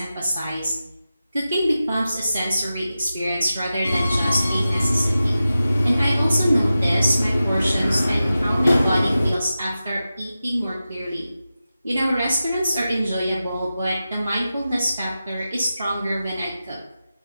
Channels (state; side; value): inverted; both; correlation -0.93